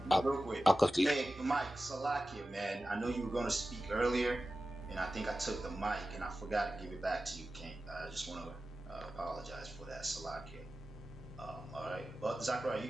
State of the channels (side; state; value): both; normal; correlation 0.94